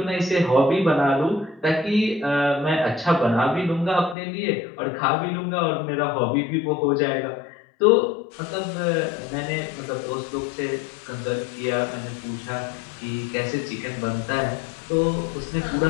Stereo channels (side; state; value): right; drops out; at 4.2 s